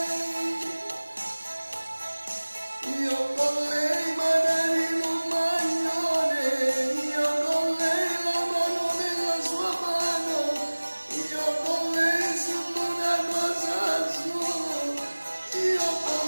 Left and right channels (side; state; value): both; inverted; correlation -1.00